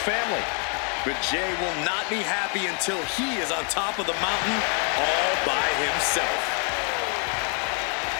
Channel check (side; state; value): right; quieter; 39.9 dB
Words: family. But Jey will not be happy until he is on top of the mountain all by himself.